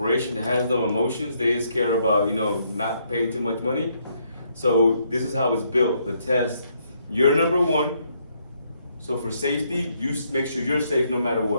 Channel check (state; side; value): inverted; both; correlation -0.73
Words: that has no emotions. They just care about, not paying too much money. So this is how it's built. The test, you're number 1. So for safety, you make sure you're safe no matter